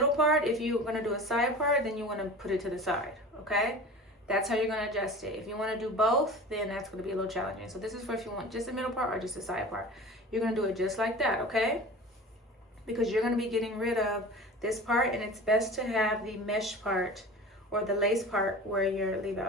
part. If you're gonna do a side part, then you wanna put it to the side, okay? That's how you're gonna adjust it. If you wanna do both, then that's gonna be a little challenging. So this is for if you want just the middle part or just the side part. You're gonna do it just like that, okay? Because you're gonna be getting rid of this part, and it's best to have the mesh part or the lace part where your leave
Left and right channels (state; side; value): normal; both; correlation 0.37